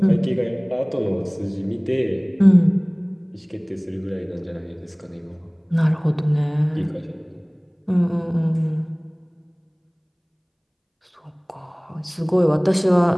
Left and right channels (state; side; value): identical; both; correlation 1.00